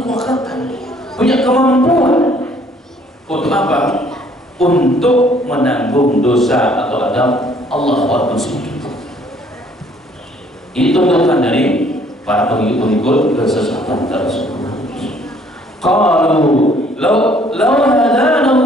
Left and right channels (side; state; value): both; normal; correlation 0.61